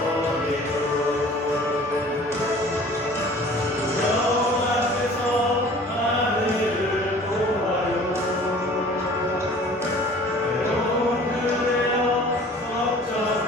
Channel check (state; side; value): normal; both; correlation 0.48